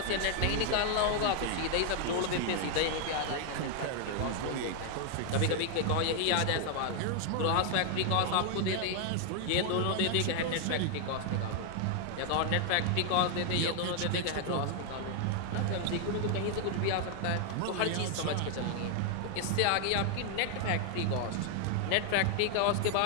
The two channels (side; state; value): both; different; correlation 0.00